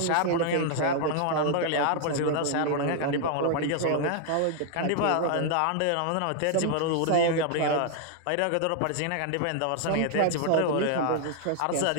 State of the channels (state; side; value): different; both; correlation 0.00